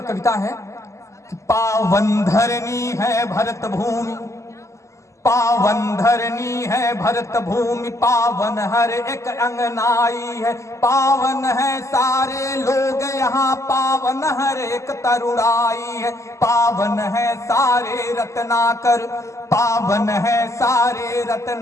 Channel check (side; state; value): right; late; 0.14 ms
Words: कविता है कि पावन धरनी है भरत भूमि, पावन धरनी है भरत भूमि, पावन हर एक अंगनाई है। पावन है सारे लोग यहाँ, पावन हर एक तरुणाई है। पावन है सारे रत्नाकर, पावन है सारे